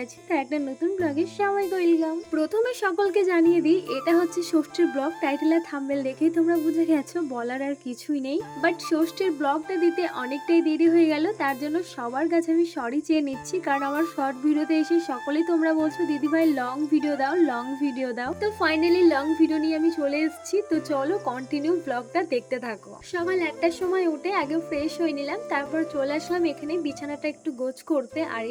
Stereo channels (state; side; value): identical; both; correlation 1.00